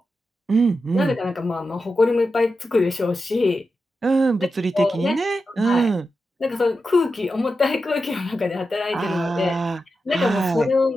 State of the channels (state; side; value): normal; both; correlation 0.90